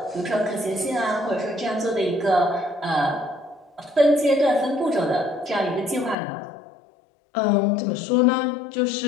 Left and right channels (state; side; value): drops out; right; at 6.2 s